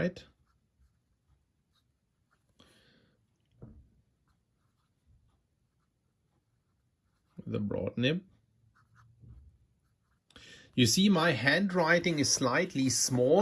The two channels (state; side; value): identical; both; correlation 1.00